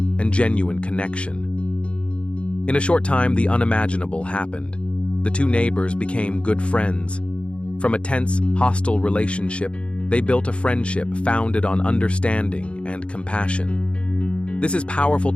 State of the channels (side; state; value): right; late; 0.059 ms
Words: genuine connection. In a short time, the unimaginable happened. the two neighbors became good friends. From a tense, hostile relationship, they built a friendship founded on understanding and compassion. This is powerful